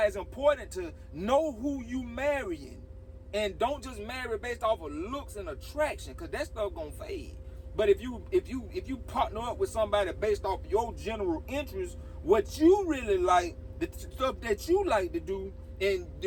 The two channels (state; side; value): identical; both; correlation 1.00